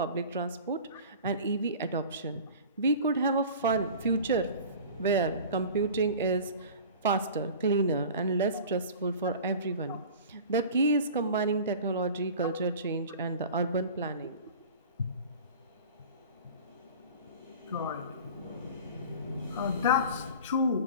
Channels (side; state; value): both; inverted; correlation -0.39